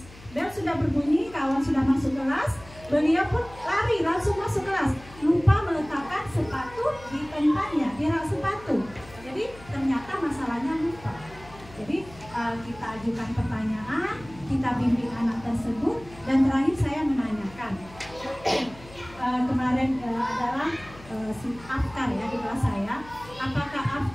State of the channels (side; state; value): left; noise; hum, 20 dB below the sound